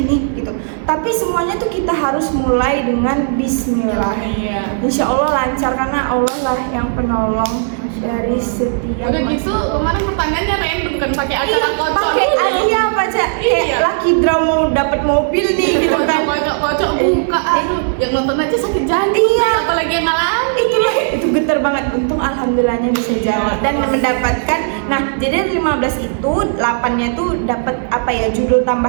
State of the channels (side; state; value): left; silent; digital silence